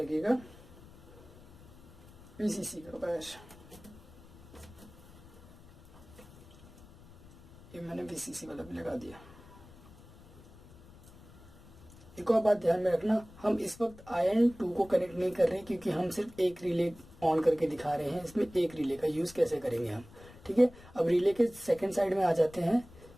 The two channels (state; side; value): noise; left; rumble, 21 dB below the sound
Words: VCC का वायर, ये मैंने VCC वाला भी लगा दिया। एक और बात ध्यान में रखना, हम इस वक्त IN2 को कनेक्ट नहीं कर रहे क्योंकि हम सिर्फ एक रिले ऑन करके दिखा रहे हैं। इसमें एक रिले का यूज कैसे करेंगे हम। ठीक है, अब रिले के सेकंड साइड में आ जाते हैं।